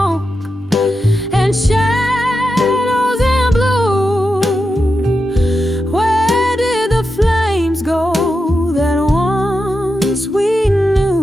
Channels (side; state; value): both; normal; correlation 0.88